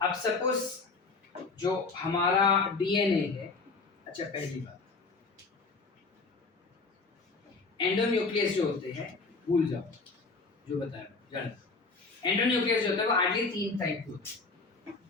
अब सपोज जो हमारा डीएनए है, अच्छा पहली बात एंडोन्यूक्लियस जो होते हैं भूल जाओ, जो बताया जान. एंडोन्यूक्लियस जो होता है वो आइडियली 3 टाइप के होते हैं.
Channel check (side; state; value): right; quieter; 4.1 dB